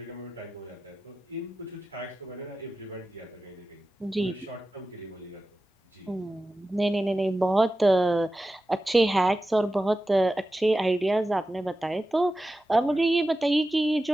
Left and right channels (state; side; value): normal; both; correlation 0.93